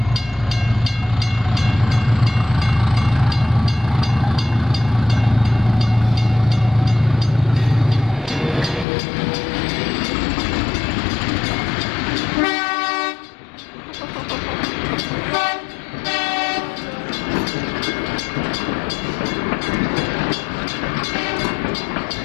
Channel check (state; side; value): drops out; right; at 8.8 s